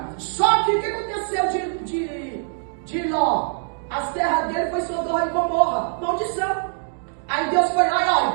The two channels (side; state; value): left; silent; digital silence